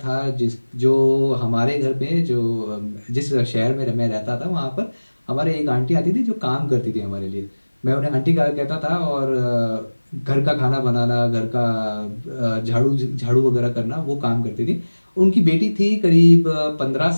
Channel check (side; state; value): both; inverted; correlation -1.00